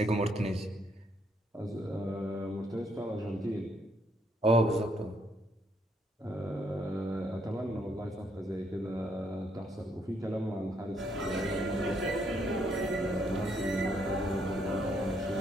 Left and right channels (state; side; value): normal; both; correlation 0.72